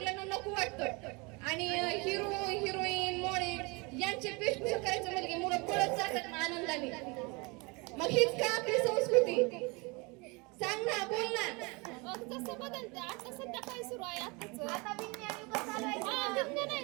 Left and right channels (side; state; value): left; quieter; 27.9 dB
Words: नको वाटतं. आणि हिरो हिरोईन मॉडेल यांचे वेशभूषा करायचं म्हणजे मुलं पळत जातात ना आनंदाने. मग हीच का आपली संस्कृती? सांग ना, बोल ना. जसं बदलते आता सध्या काय सुरू आहे आता विज्ञान युग चालू आहे. विज्ञान आहे